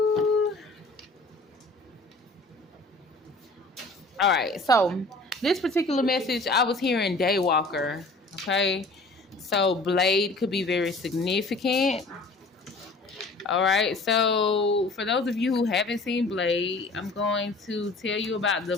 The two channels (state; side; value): quieter; right; 3.1 dB